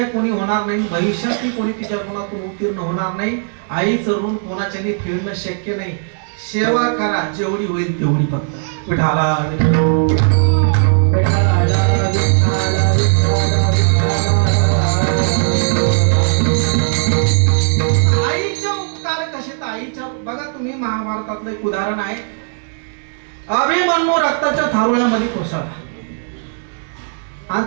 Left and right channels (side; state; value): left; silent; digital silence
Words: कोणी होणार नाही, भविष्यातही कोणी तिच्या ऋणातून उत्तीर्ण होणार नाही. आईचं ऋण कोणाच्याने फेडणं शक्य नाही. सेवा करा जेवढी होईल तेवढी फक्त. विठाला आईचे उपकार कसे? तर आईच्या बघा तुम्ही महाभारतातलं एक उदाहरण आहे. अभिमन्यू रक्ताच्या थारोळ्यामध्ये कोसळला आणि